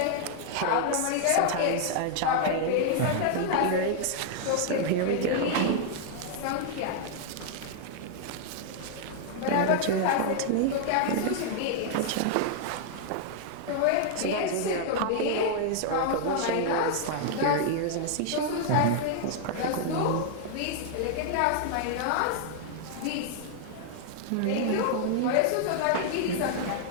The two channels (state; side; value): different; both; correlation -0.01